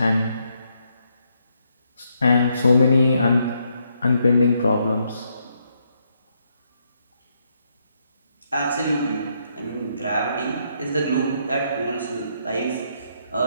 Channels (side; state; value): both; inverted; correlation -0.76